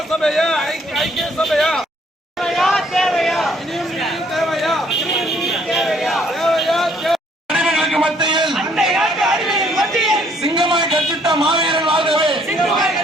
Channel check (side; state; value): both; normal; correlation 0.64